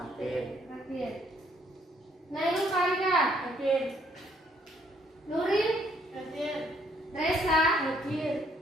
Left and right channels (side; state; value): both; normal; correlation 0.67